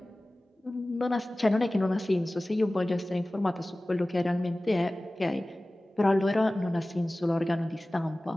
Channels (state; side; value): normal; both; correlation 0.97